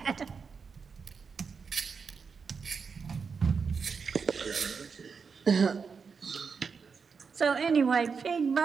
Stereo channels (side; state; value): left; quieter; 5.6 dB